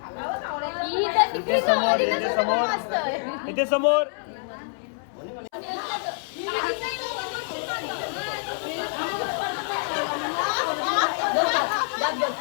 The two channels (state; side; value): silent; right; 61 dB below the other